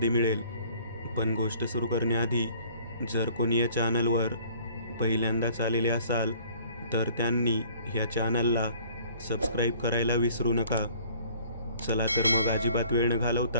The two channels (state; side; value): inverted; both; correlation -0.54